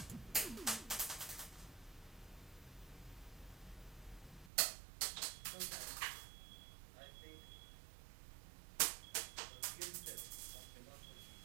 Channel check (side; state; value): left; drops out; at 4.5 s